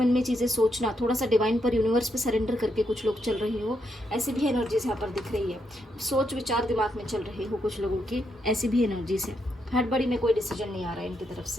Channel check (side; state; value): both; normal; correlation 0.80